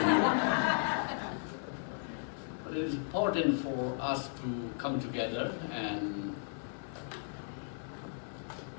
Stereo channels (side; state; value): right; silent; 54 dB below the other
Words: here. But it is important for us to come together and